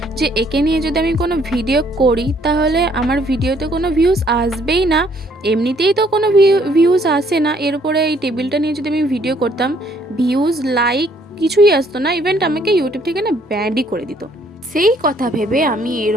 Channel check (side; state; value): both; normal; correlation 0.64